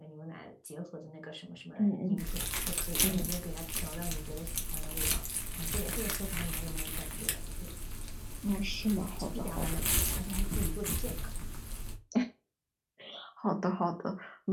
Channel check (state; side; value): identical; both; correlation 1.00